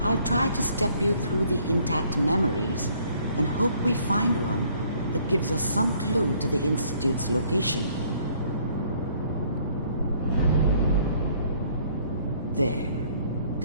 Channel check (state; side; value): inverted; both; correlation -0.62